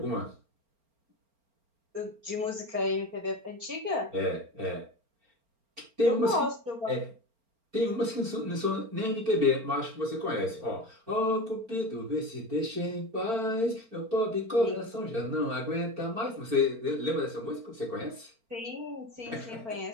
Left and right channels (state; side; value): late; left; 4.4 ms